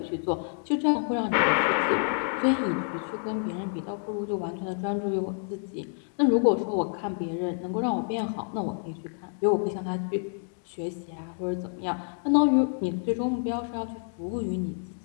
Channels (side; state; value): right; silent; 59 dB below the other